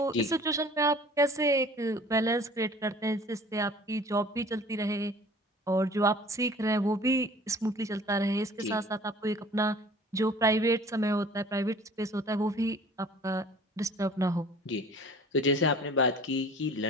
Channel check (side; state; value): both; normal; correlation 0.48